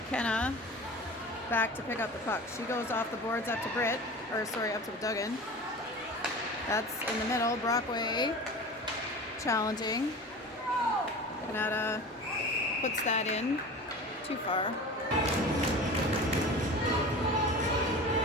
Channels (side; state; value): both; normal; correlation 0.35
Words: back to pick up the puck. She goes off the boards up to up to Duggan. That's in the middle. Brockway challenging. Kanata puts that in. Too far.